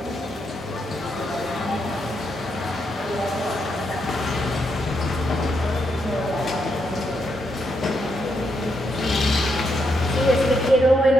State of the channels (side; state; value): both; normal; correlation 0.80